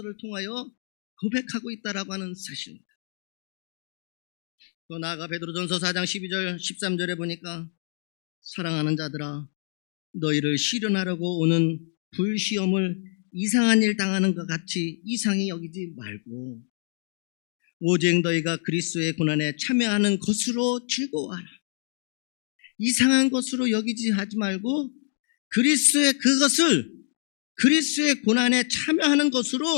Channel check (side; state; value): right; silent; digital silence